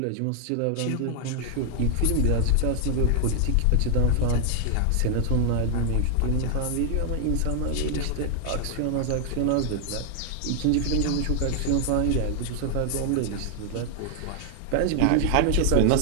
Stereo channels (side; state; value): both; different; correlation 0.00